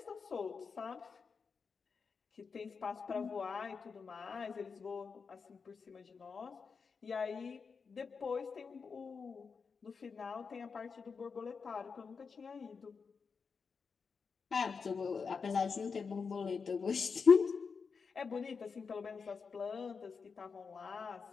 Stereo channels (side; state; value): right; quieter; 5.4 dB